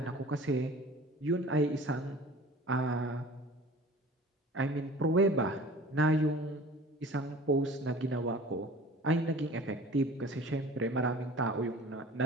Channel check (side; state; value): both; normal; correlation 0.44